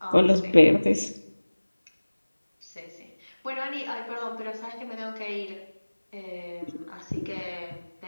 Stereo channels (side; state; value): both; inverted; correlation -1.00